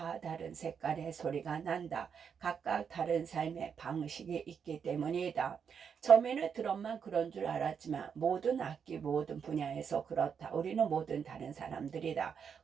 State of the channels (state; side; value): quieter; left; 7.0 dB